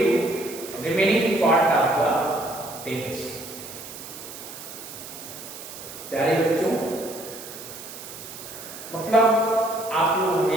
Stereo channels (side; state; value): right; noise; hiss, 13 dB below the sound